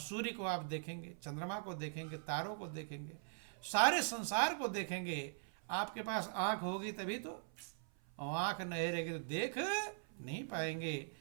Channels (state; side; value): silent; left; 50 dB below the other